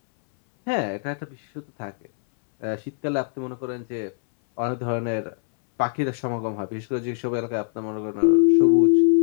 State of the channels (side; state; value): right; silent; 62 dB below the other